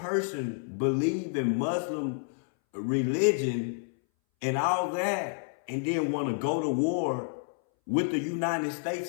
believe in Muslim religion and all that and then want to go to war with the United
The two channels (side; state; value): right; silent; 58 dB below the other